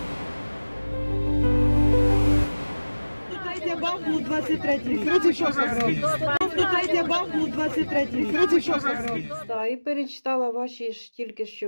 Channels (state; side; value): inverted; both; correlation -1.00